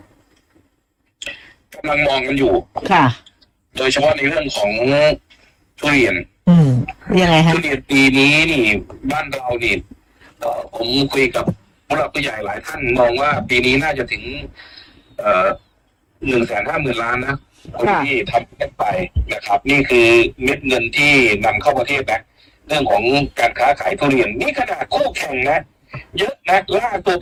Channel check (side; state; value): both; identical; correlation 1.00